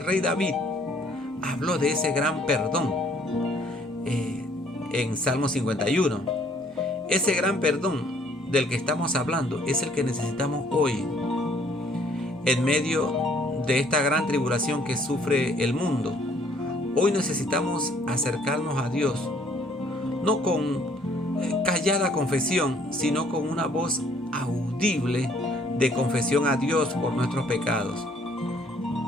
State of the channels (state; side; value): normal; both; correlation 0.61